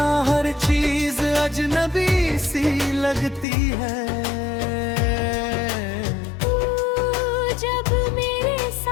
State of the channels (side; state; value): right; drops out; at 3.5 s